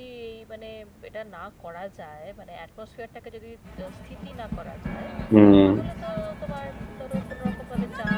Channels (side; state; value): both; identical; correlation 1.00